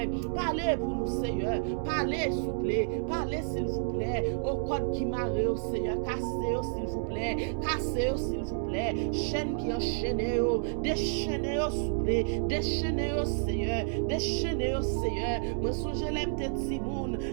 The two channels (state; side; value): silent; left; digital silence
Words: Pas Parlez pour nous, Seigneur. Parlez, s'il vous plaît. Parlez, s'il vous plaît. Au code qui marre, Seigneur. Cassez-le, s'il vous plaît. Cassez-le, s'il vous plaît. Chaîne qui enchaîne, déchaînez-le, s'il vous plaît. Déchaînez-le, Seigneur. Déchaînez-le, Seigneur. Moi, songe, l'aime tes petits moun.